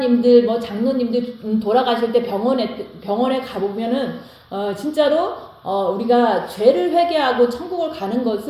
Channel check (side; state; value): both; identical; correlation 1.00